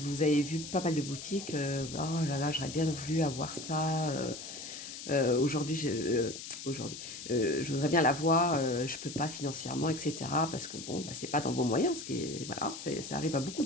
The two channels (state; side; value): noise; left; hiss, 10 dB below the sound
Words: avez vu pas mal de boutiques. Oh là là, j'aurais bien voulu avoir ça. Aujourd'hui, je voudrais bien l'avoir. Je peux pas financièrement, etc. Parce que bon, c'est pas dans vos moyens. Ça arrive à beaucoup